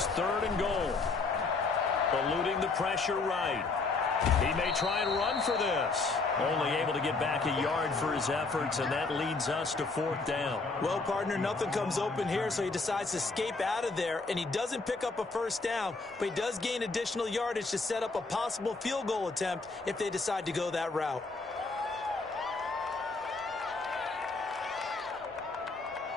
3rd and goal. Eluding the pressure right. He may try and run for this. Only able to get back a yard for his efforts, and that leads us to 4th down. Well, partner, nothing comes open here, so he decides to escape out of there, and he doesn't pick up a 1st down, but he does gain additional yardage to set up a possible field goal attempt if they decide to go that route.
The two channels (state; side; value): quieter; right; 3.9 dB